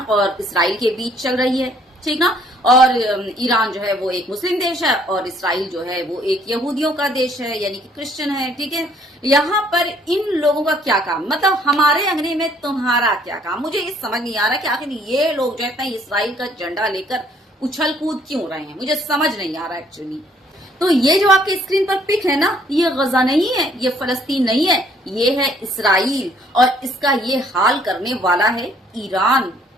और इसराइल के बीच चल रही है, ठीक ना। और ईरान जो है वो एक मुस्लिम देश है और इसराइल जो है वो एक यहूदियों का देश है, यानी कि क्रिश्चियन है, ठीक है। यहाँ पर इन लोगों का क्या काम, मतलब हमारे अंगने में तुम्हारा क्या काम। मुझे ये समझ नहीं आ रहा कि आखिर ये लोग जो है इसराइल का झंडा लेकर उछल कूद क्यों रहे हैं, मुझे समझ नहीं आ रहा एक्चुअली। तो ये जो आपके स्क्रीन पर पिक है ना, ये गजा नहीं है, ये फलस्तीन नहीं है, ये है इसराइल और इसका ये हाल करने वाला है ईरान।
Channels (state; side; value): normal; both; correlation 0.63